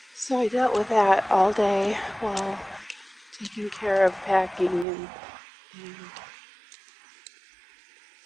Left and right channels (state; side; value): drops out; left; at 4.9 s